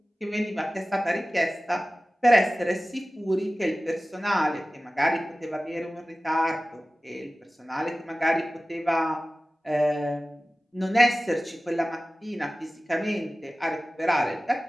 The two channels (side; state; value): both; normal; correlation 0.97